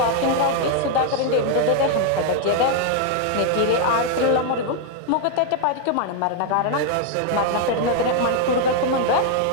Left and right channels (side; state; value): both; different; correlation 0.00